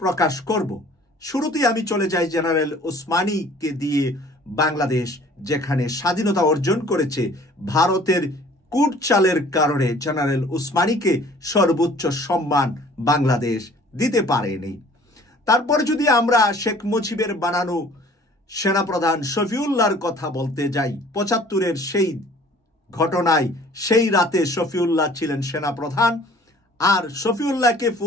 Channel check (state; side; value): normal; both; correlation 0.52